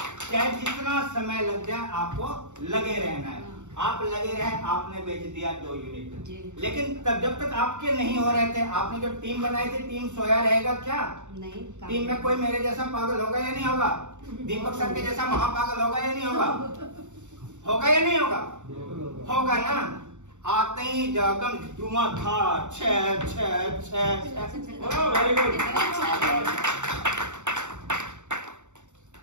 चाहे जितना समय लग जाए आपको लगे रहना है। आप लगे रहे, आपने बेच दिया 2 यूनिट, लेकिन तब जब तक आपके नहीं हो रहे थे, आपने जो टीम बनाई थी, टीम सोया रहेगा क्या? नहीं। टीम में कोई मेरे जैसा पागल होगा या नहीं होगा? दीपक सर के जैसा महापागल होगा या नहीं होगा? होगा या नहीं होगा? होगा ना। आते ही जगम धुआंधार, छह छह छह, वेरी गुड,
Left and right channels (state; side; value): late; left; 0.84 ms